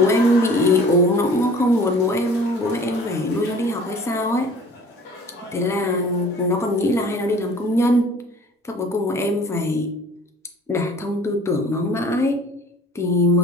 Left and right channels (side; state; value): both; normal; correlation 0.48